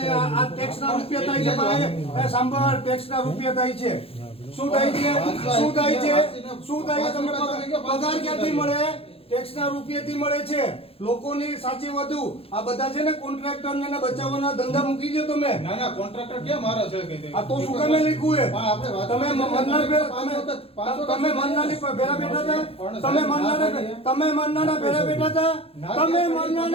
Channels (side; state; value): right; late; 0.28 ms